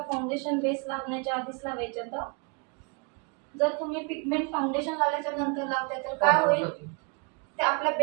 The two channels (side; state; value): left; quieter; 33.4 dB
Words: फाउंडेशन बेस लागण्याच्या आधीच लावायचे. तर जर तुम्ही पिगमेंट फाउंडेशन लावल्याच्या नंतर लावताय तर काय होईल, ते आपल्या